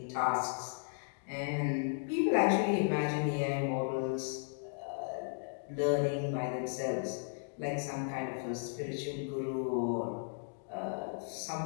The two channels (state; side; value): silent; right; digital silence